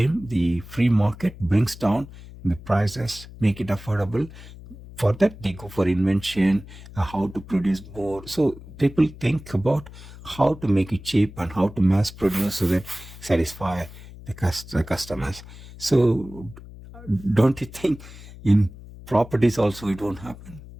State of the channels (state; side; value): noise; left; hum, 17 dB below the sound